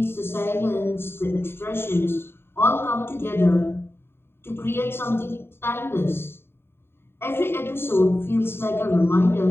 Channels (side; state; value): right; late; 0.11 ms